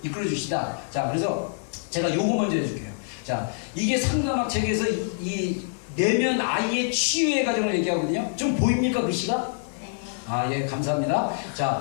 이끌어 주시다. 자, 그래서 제가 요거 먼저 해줄게요. 자, 이게 상가막 책에서 이 내면 아이의 치유의 과정을 얘기하거든요. 좀 보입니까 글씨가? 네. 예, 감사합니다.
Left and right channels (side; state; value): right; silent; 61 dB below the other